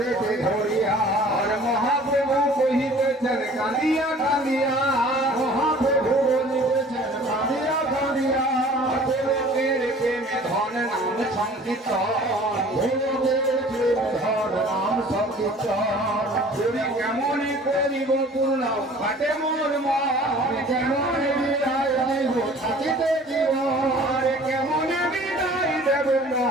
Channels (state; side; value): normal; both; correlation 0.49